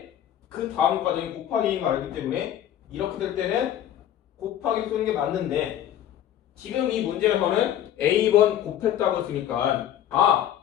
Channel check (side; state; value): right; quieter; 11.1 dB